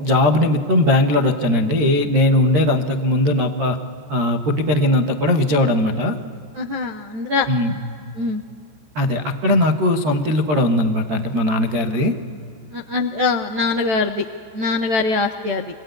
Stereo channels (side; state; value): left; late; 13 ms